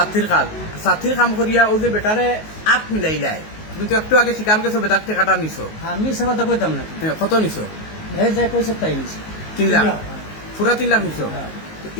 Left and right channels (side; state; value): right; late; 19 ms